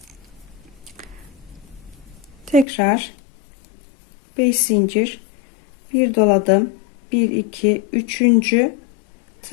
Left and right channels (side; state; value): right; drops out; at 2.7 s